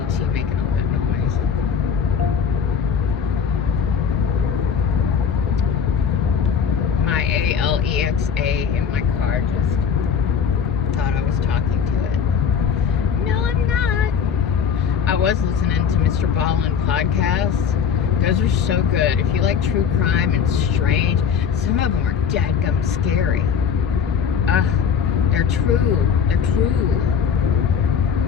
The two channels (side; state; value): right; quieter; 7.1 dB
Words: making all that noise. My ALEXA in my car just thought I was talking to it. No, I'm not. I was listening to Mr. Ballin podcast Those are so good. If you like true crime and strange, some of them are dadgum scary. They're true. They're true.